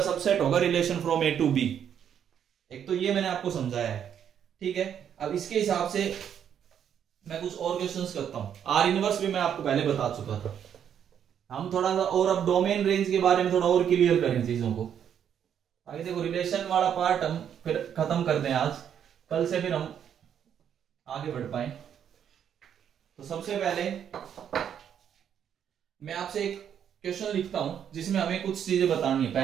सबसेट होगा relation from A to B. एक तो ये मैंने आपको समझाया है, ठीक है। अब इसके हिसाब से मैं कुछ और क्वेश्चंस करता हूं। आर इनवर्स भी मैं आपको पहले बता चुका था। हम थोड़ा सा और अब डोमेन रेंज के बारे में थोड़ा और क्लियर करें चीजों को। आगे देखो, रिलेशन वाला पार्ट हम फिर खत्म कर दें आज, कल से फिर हम आगे बढ़ पाए। तो सबसे पहले मैं आपसे एक क्वेश्चन लिखता हूं जिसमें हमें कुछ चीजें बतानी है।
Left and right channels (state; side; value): quieter; left; 8.8 dB